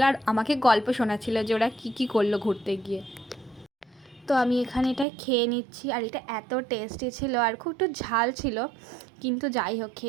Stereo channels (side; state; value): left; drops out; at 5.1 s